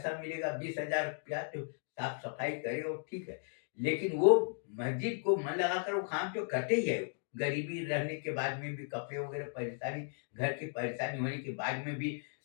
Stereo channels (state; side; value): silent; right; 54 dB below the other